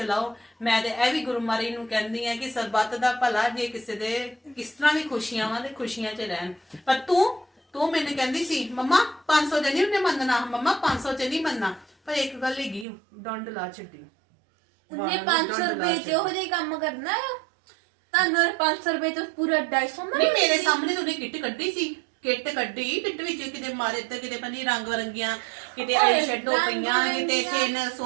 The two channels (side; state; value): left; drops out; at 12.9 s